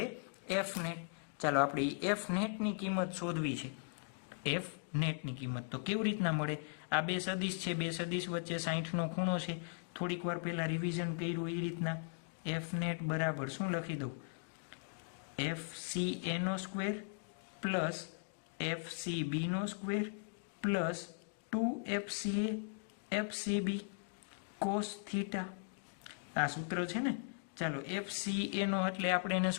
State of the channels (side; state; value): right; quieter; 38.4 dB